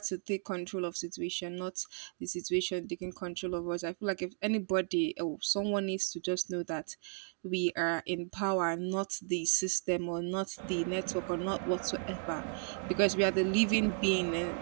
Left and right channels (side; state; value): left; silent; 55 dB below the other